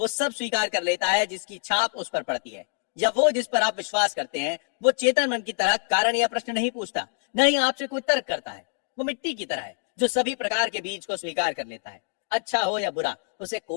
सब स्वीकार कर लेता है जिसकी छाप उस पर पड़ती है, या वो जिस पर आप विश्वास करते हैं। वो चेतन मन की तरह कारण या प्रश्न नहीं पूछता, न ही आपसे कोई तर्क करता है। वो मिट्टी की तरह है जो सभी प्रकार के बीज को स्वीकार कर लेता है। अच्छा हो या बुरा, उसे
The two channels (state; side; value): silent; right; digital silence